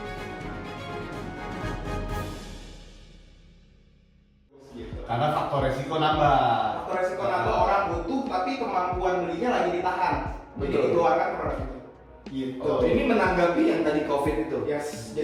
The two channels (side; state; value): both; identical; correlation 1.00